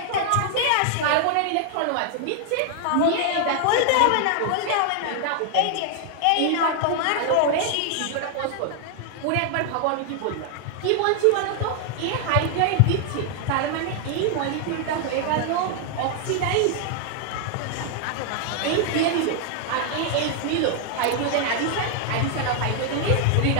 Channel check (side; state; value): both; different; correlation 0.00